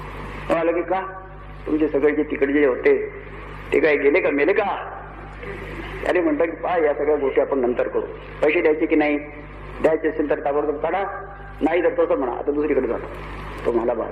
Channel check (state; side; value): identical; both; correlation 1.00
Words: म्हणाला की का, तुमचे सगळे जे तिकडे जे होते ते काय गेले का, मेले का? अरे म्हणतात की पहा, या सगळ्या गोष्टी आपण नंतर करू. पैसे द्यायचे की नाही, द्यायचे असेल तर ताबडतोब काढा, नाही तर तसं म्हणा आता दुसरीकडे जाणं. तो मला